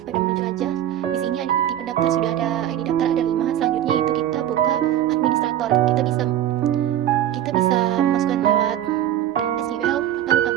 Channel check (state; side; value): quieter; left; 11.7 dB